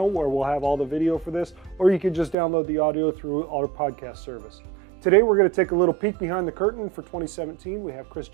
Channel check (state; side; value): drops out; left; at 2.4 s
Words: where we'll have all the video for this, or you can just download the audio through our podcast service. Today we're going to take a little peek behind the curtain for 2017. We have Chris